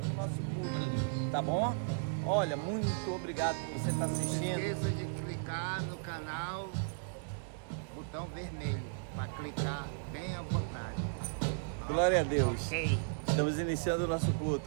o nosso culto, tá bom? Olha, muito obrigado por você estar assistindo. Não esqueça de clicar no canal, botão vermelho, para clicar bem à vontade. Glória a Deus. Ok. Estamos iniciando o nosso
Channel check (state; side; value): silent; left; digital silence